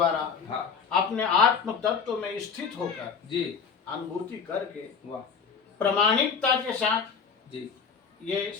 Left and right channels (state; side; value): quieter; right; 6.2 dB